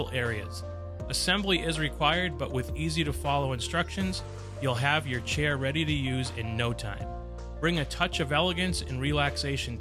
areas. Assembly is required, but with easy to follow instructions, you'll have your chair ready to use in no time. Bring a touch of elegance and relaxation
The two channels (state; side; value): identical; both; correlation 1.00